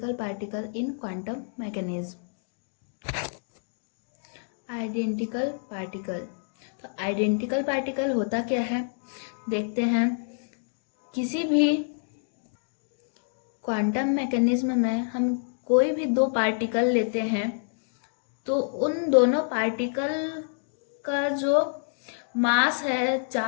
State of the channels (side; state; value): right; silent; digital silence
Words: particle in quantum mechanism. Identical particle. तो आइडेंटिकल पार्टिकल होता क्या है देखते हैं। किसी भी क्वांटम मैकेनिज्म में हम कोई भी दो पार्टिकल लेते हैं तो उन दोनों पार्टिकल का जो मास है,